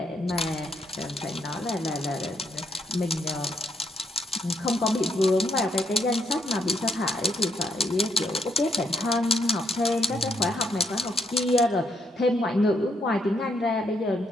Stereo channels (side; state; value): both; normal; correlation 0.73